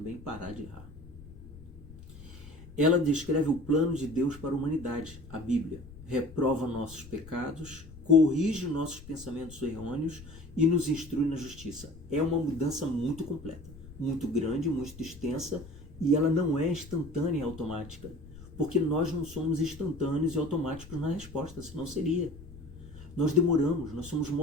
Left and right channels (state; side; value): noise; left; rumble, 17 dB below the sound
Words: parar de errar. Ela descreve o plano de Deus para a humanidade, a Bíblia. Reprova nossos pecados, corrige nossos pensamentos errôneos e nos instrui na justiça. É uma mudança muito completa, muito grande, muito extensa, e ela não é instantânea e automática, porque nós não somos instantâneos e automáticos na resposta, senão seria. Nós demoramos, nós somos